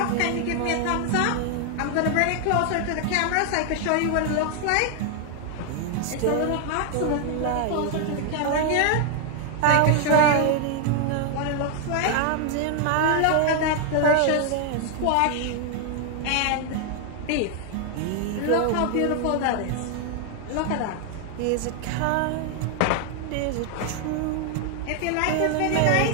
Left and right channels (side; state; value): both; different; correlation 0.00